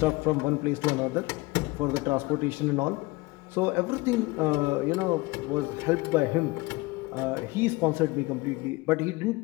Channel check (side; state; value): right; quieter; 22.3 dB